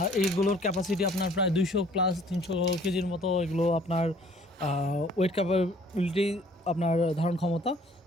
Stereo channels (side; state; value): both; normal; correlation 0.56